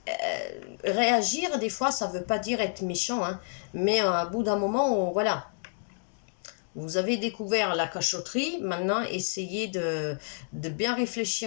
Réagir, des fois, ça veut pas dire être méchant, hein, mais à bout d'un moment, voilà, vous avez découvert la cachotterie, maintenant essayez de bien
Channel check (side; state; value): right; silent; digital silence